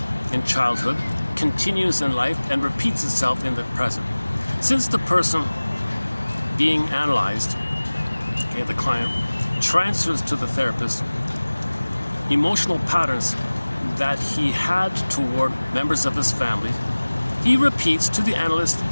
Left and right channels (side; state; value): both; inverted; correlation -1.00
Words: in childhood, continues in life, and repeats itself in the present. Since the person being analyzed, okay, the client, transfers to the therapist emotional patterns that he had toward members of his family, he repeats to the analyst